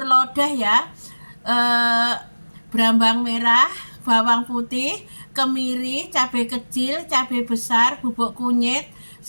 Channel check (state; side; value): inverted; both; correlation -1.00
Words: lodeh ya. Berambang merah, bawang putih, kemiri, cabai kecil, cabai besar, bubuk kunyit,